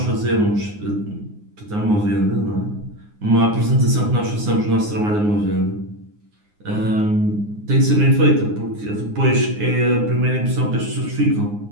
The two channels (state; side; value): late; left; 9.7 ms